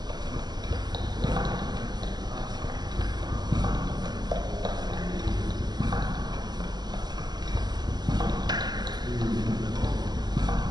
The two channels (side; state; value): left; late; 0.20 ms